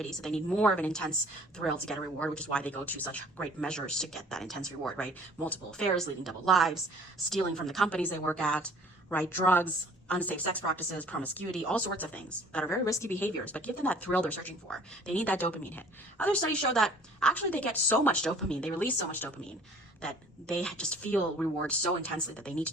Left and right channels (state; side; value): normal; both; correlation 0.52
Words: so they need more of an intense thrill to get a reward, which is why they go to such great measures to get that intense reward, right? Multiple affairs, leading double lives, stealing from the companies they work at, right? Drugs, unsafe sex practices, promiscuity, all sorts of things that are very risky behaviors, but give them that thrill they're searching for. They need that dopamine hit. Other studies show that actually they get so much dopamine, they release so much dopamine, that they just feel reward so intensely that they need to